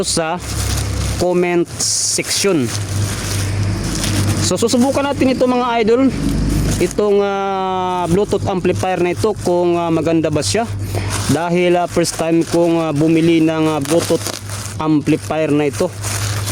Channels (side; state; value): both; identical; correlation 1.00